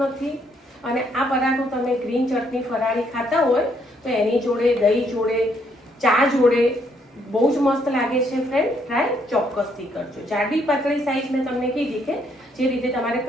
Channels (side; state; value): both; normal; correlation 0.71